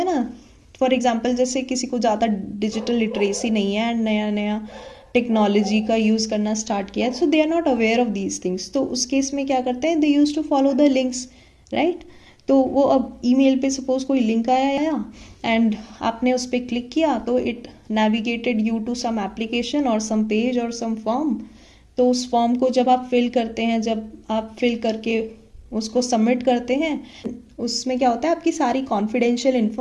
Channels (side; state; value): both; identical; correlation 1.00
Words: ना, फॉर एग्जांपल जैसे किसी को ज़्यादा डिजिटल लिटरेसी नहीं है एंड नया नया टेक्नोलॉजी का यूज़ करना स्टार्ट किया है, so they are not aware of these things. तो उस केस में क्या करते हैं, they use to follow the links, right? तो वो अब ईमेल पे सपोज कोई लिंक आया एंड आपने उस पर क्लिक किया तो it navigated you to some application और सम पेज और सम फॉर्म. तो उस फॉर्म को जब आप फिल करते हैं, जब आप फिल करके उसको सबमिट करते हैं, उसमें क्या होता है, आपकी सारी confidential